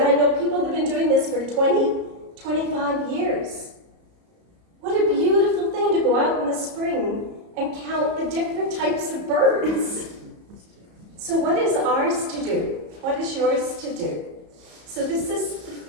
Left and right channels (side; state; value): left; late; 34 ms